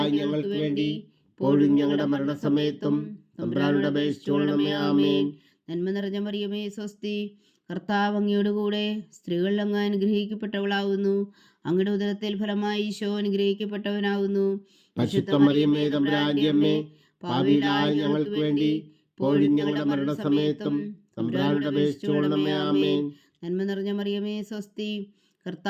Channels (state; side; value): identical; both; correlation 1.00